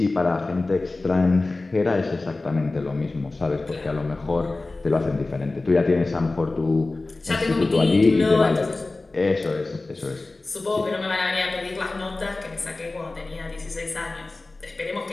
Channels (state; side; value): quieter; right; 3.2 dB